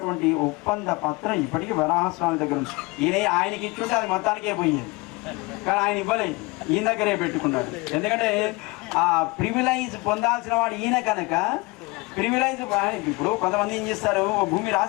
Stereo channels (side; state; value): right; quieter; 25.0 dB